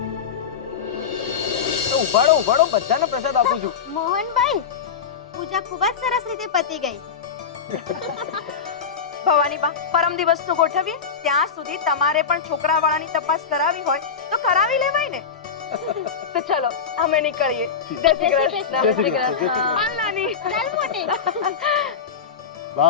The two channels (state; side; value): quieter; right; 6.3 dB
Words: તો ઉભાડો બધાને પ્રસાદ આપું છું. મોહનભાઈ, પૂજા ખૂબ જ સરસ રીતે પતી ગઈ. ભવાની બા, પરમ દિવસનું ગોઠવીએ. ત્યાં સુધી તમારે પણ છોકરાવાળાની તપાસ કરાવી હોય તો કરાવી લેવાય ને. તો ચલો અમે નીકળીએ. જય શ્રી કૃષ્ણ. જય શ્રી કૃષ્ણ. હાલ નાની. ચાલ મોટી.